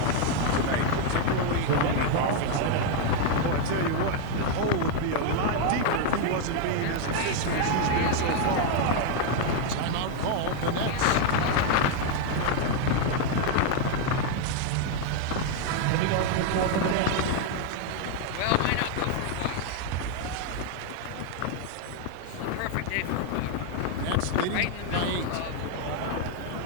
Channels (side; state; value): both; different; correlation 0.00